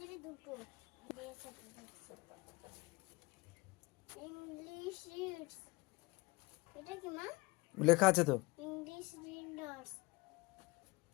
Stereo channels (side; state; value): right; quieter; 24.2 dB